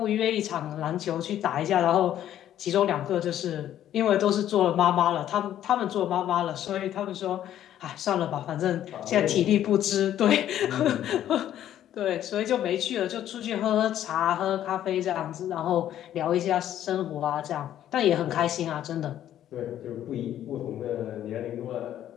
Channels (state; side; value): quieter; right; 11.5 dB